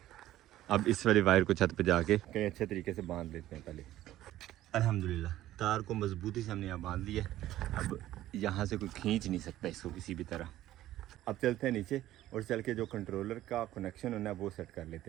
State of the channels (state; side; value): quieter; left; 14.2 dB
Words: अब इस वाली वायर को छत पे जाके कहीं अच्छे तरीके से बांध लेते हैं पहले। अल्हम्दुलिल्लाह तार को मजबूती से हमने यहाँ बांध लिया। अब यहाँ से कोई खींच नहीं सकता इसको किसी भी तरह। अब चलते हैं नीचे और चल के जो कंट्रोलर का कनेक्शन होना है वो सेट कर